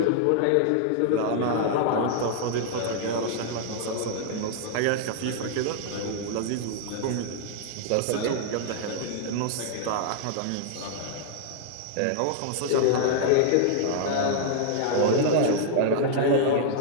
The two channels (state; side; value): different; both; correlation -0.01